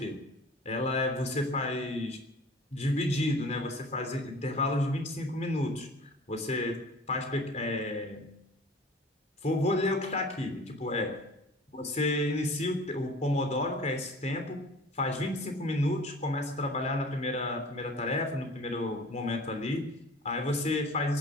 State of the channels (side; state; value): both; normal; correlation 0.44